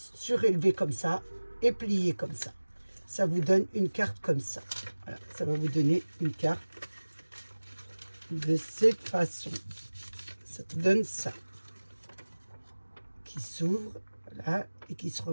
surélevés comme ça et pliés comme ça. Ça vous donne une carte comme ça. Voilà, ça va vous donner une carte de cette façon. Ça vous donne ça. Qui s'ouvre, voilà, et qui se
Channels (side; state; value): both; inverted; correlation -1.00